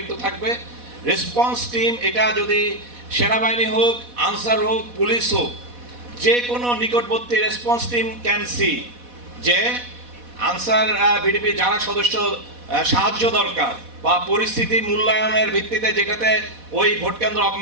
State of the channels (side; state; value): left; late; 4.1 ms